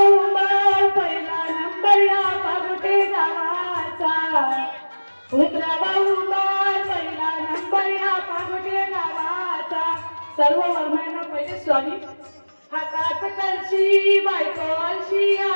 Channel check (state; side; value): inverted; both; correlation -1.00